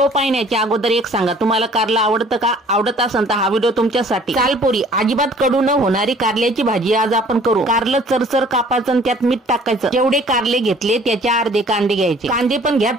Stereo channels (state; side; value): normal; both; correlation 0.54